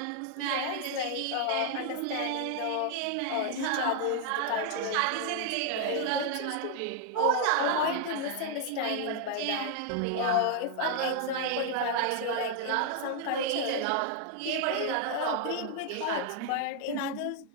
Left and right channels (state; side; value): different; both; correlation 0.00